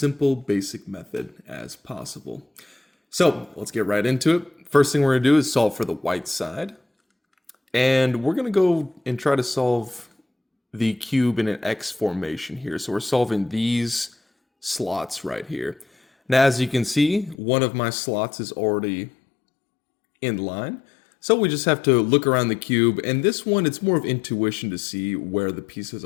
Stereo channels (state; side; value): drops out; right; at 17.4 s